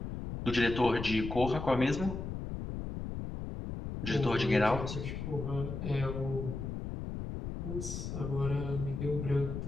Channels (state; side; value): noise; left; rumble, 6 dB below the sound